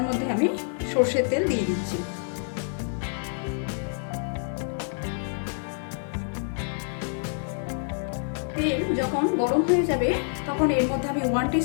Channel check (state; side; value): silent; right; 60 dB below the other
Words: মধ্যে আমি সর্ষের তেল দিয়ে দিচ্ছি। তেল যখন গরম হয়ে যাবে তখন এর মধ্যে আমি 1